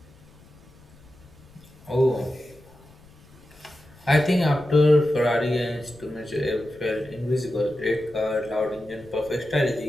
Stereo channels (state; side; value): noise; left; rumble, 25 dB below the sound